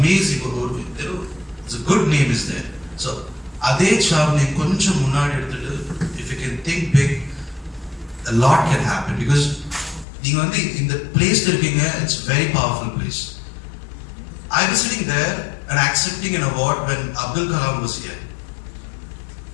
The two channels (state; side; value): drops out; right; at 10.1 s